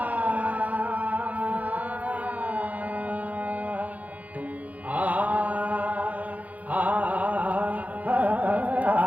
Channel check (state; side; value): late; left; 0.073 ms